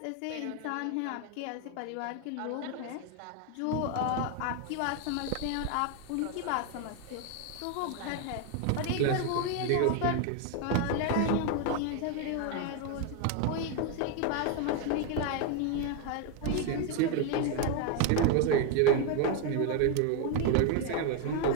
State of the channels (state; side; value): different; both; correlation 0.01